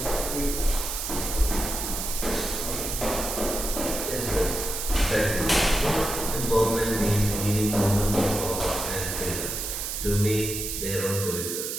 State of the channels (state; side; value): noise; right; hiss, 4 dB below the sound